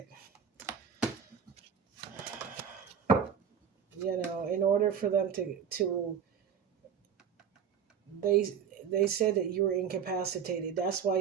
in order for them to they said that you were incapacitated. That's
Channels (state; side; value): quieter; left; 7.6 dB